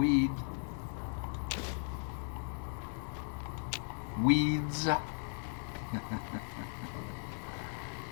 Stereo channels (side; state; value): right; silent; 53 dB below the other